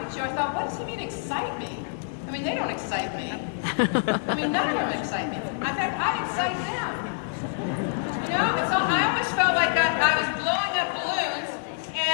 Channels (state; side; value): silent; right; 60 dB below the other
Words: you, I thought, what does he mean excite me? I mean, they don't excite me. I mean, none of them excite me. In fact, I excite them. So I always felt like I was blowing up balloons,